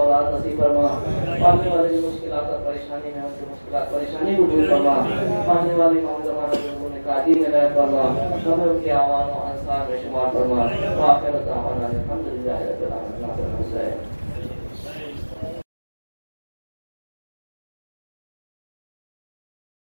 اولاد نصیب فرما. پڑھنے والے جو مشکلات اور پریشانی میں ہیں اسے مشکلات پریشانی کو دور فرما. پڑھنے والے امام زمانہ جو انہوں نے قادی میں عنایت فرما, ہمیں ان کے اعوان و انصار میں شمار فرما. وآخر دعوانا الحمدللہ رب العالمین.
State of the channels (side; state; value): both; inverted; correlation -1.00